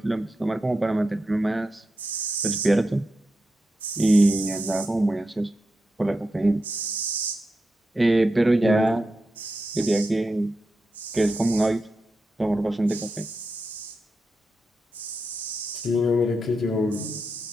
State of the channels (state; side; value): normal; both; correlation 0.88